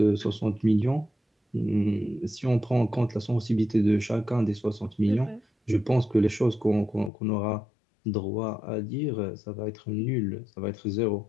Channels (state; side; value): drops out; right; at 7.1 s